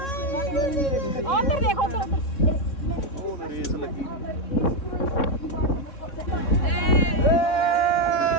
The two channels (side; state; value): right; late; 3.6 ms